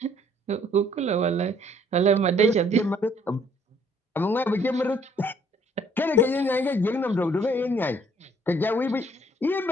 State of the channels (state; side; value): normal; both; correlation 0.62